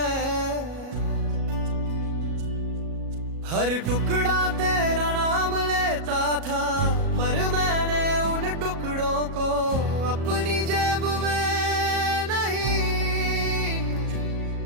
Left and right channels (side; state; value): left; late; 37 ms